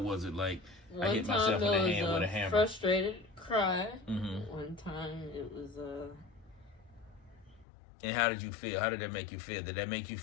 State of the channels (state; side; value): drops out; right; at 7.7 s